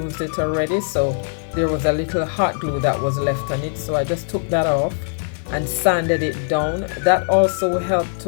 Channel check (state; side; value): silent; right; digital silence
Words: it already, so there was a little hot glue that was left on it. So I just took that off and sanded it down. That also helped